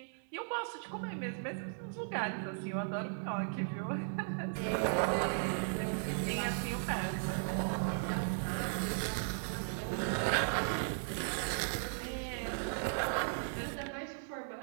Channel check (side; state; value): left; silent; 53 dB below the other